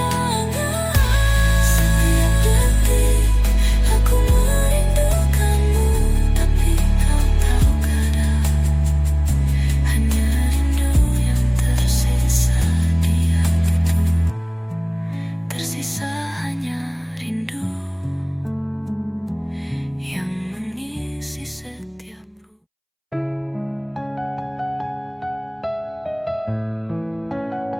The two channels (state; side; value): identical; both; correlation 1.00